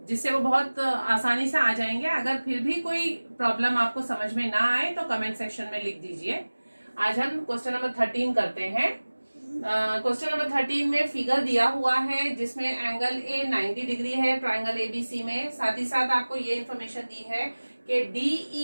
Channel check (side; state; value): both; inverted; correlation -1.00